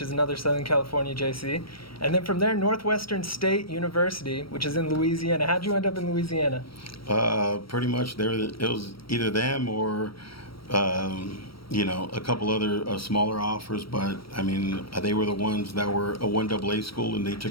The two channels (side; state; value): right; late; 0.75 ms